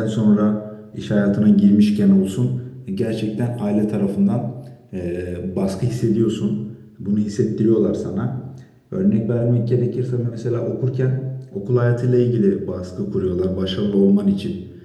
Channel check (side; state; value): both; identical; correlation 1.00